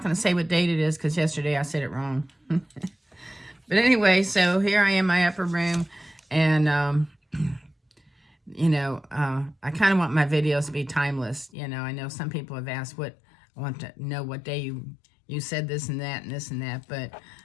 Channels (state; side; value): drops out; right; at 11.5 s